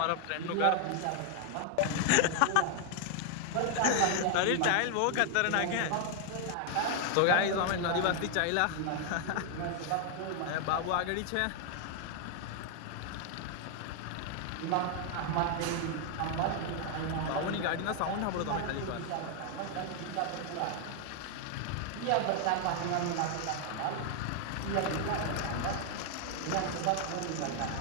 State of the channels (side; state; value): both; different; correlation 0.00